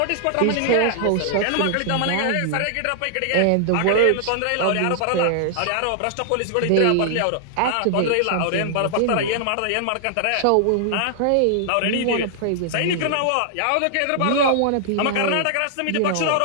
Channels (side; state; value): both; different; correlation -0.01